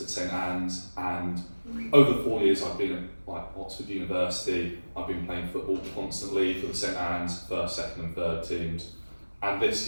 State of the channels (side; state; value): both; inverted; correlation -1.00